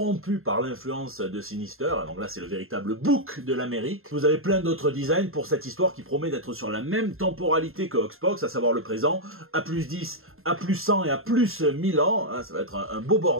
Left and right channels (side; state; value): left; late; 0.61 ms